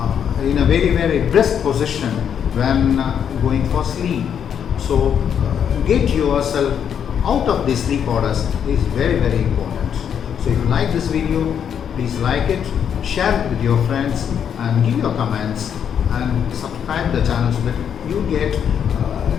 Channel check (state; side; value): quieter; right; 8.3 dB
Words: in a very, very brisk position when going for sleep. So get yourself out of these sleep orders is very, very important. So if you like this video, please like it, share it with your friends, and give your comments, and subscribe the channel so that you get